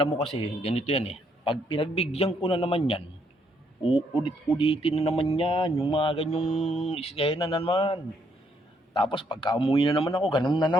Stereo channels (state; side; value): normal; both; correlation 0.72